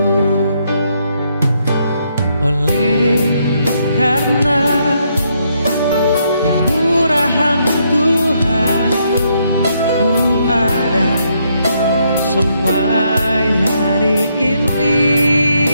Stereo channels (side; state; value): both; inverted; correlation -0.75